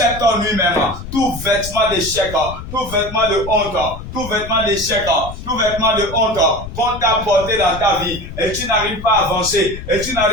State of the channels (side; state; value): left; noise; rumble, 11 dB below the sound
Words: nuit même, tout vêtement d'échec, tout vêtement de honte, tout vêtement d'échec, tout vêtement de honte qu'on t'a porté dans ta vie, et tu n'arrives pas à avancer, et tu